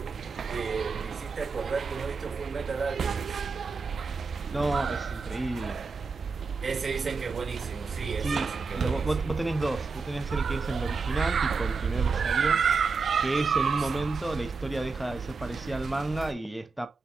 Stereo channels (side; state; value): left; quieter; 4.5 dB